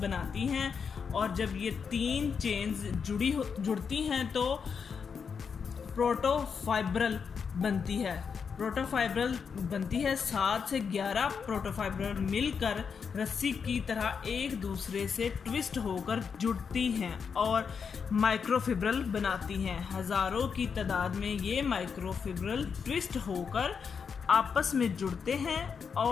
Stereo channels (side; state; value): right; quieter; 6.2 dB